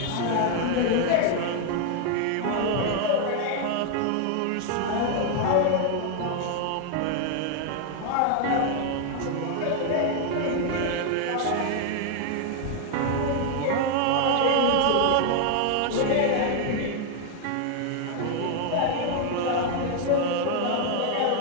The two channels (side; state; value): both; different; correlation 0.00